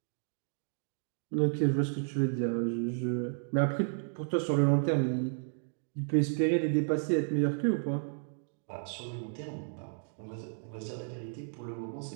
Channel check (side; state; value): left; silent; digital silence